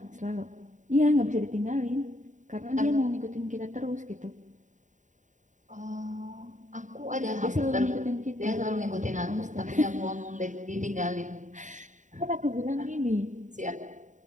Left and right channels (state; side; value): late; left; 0.36 ms